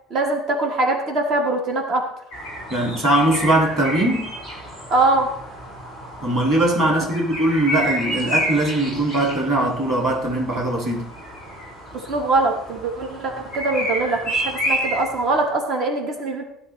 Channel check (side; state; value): both; normal; correlation 0.46